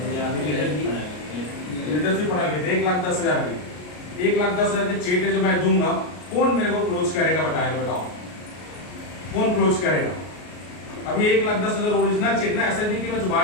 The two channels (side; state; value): right; late; 33 ms